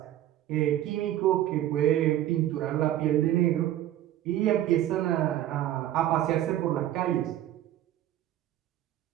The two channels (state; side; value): quieter; left; 12.8 dB